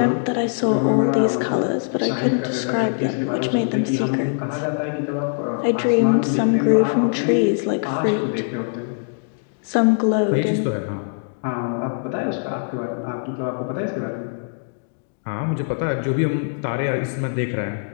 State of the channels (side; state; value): right; silent; digital silence